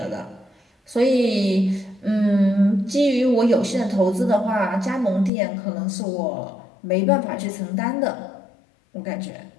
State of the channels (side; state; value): right; drops out; at 5.3 s